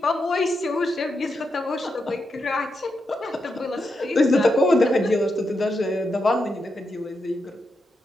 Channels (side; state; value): both; normal; correlation 0.85